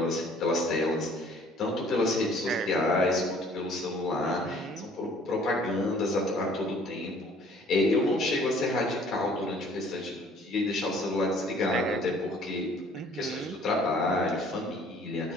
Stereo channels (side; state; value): both; normal; correlation 0.56